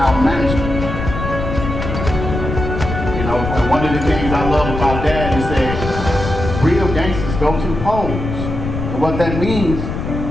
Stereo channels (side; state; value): left; noise; rumble, 5 dB below the sound